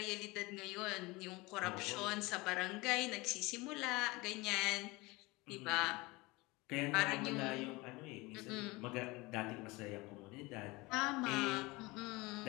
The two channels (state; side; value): quieter; right; 23.3 dB